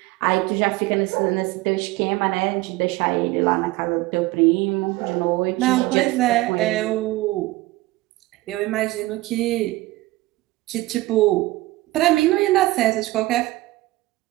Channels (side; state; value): left; quieter; 19.1 dB